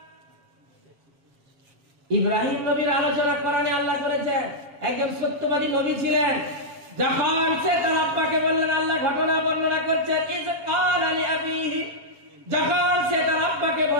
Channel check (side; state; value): left; late; 7.3 ms